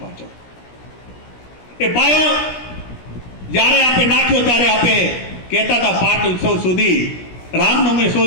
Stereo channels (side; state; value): right; late; 17 ms